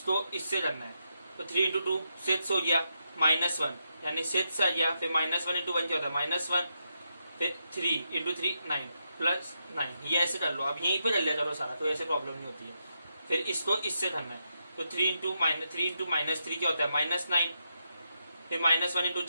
इससे करना है, तो 3 इंटू 2 6 हो गया, -1 यानी 6 आ गया, फिर -1 इंटू 1 क्या होता है -1, फिर 3 इंटू 3 9 प्लस 9, ये ऐसे कर लो। अब यहीं पे कर लिया करो सारा, तो ऐसे प्रॉब्लम नहीं होती है। फिर इसको इससे करना है, तो 3 माइनस 3 क्या होता है -9, फिर -1 इंटू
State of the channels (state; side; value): inverted; both; correlation -0.83